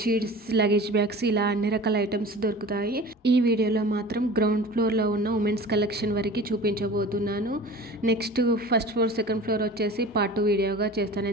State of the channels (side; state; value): both; normal; correlation 0.39